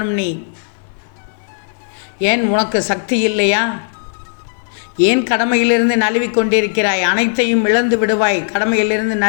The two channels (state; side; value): silent; right; 55 dB below the other